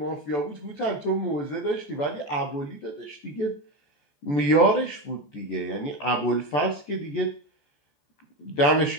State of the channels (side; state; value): right; late; 14 ms